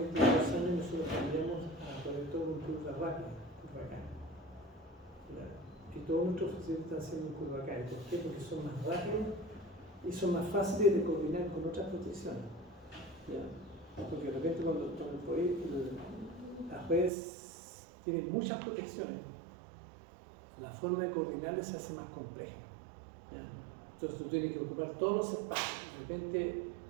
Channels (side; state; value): left; drops out; at 17.1 s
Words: 2 años nosotros cambiamos a poner todo un curva rápida, curva acá. Y todos nuestros fusibles están haciendo curva acá. ¿Por qué? Porque son más rápidos y son más fáciles de coordinar con otras protecciones. ¿Ya? Porque de repente cuando las redes tienen muchas protecciones, la forma de coordinarlas se hace más compleja. ¿Ya? Entonces tú tienes que ocupar todos los espacios. De repente